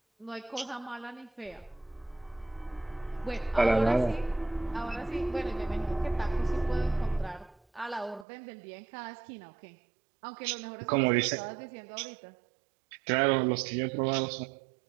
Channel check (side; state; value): left; drops out; at 8.2 s